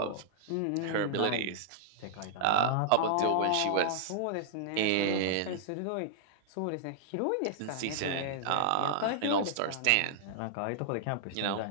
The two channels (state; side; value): different; both; correlation -0.01